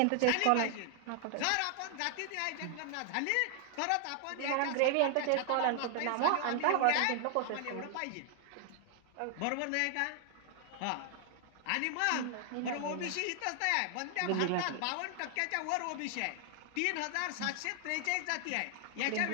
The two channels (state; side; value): different; both; correlation 0.00